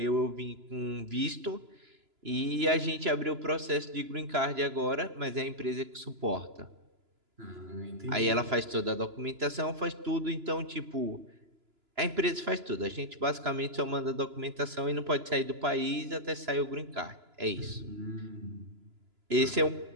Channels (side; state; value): left; late; 3.0 ms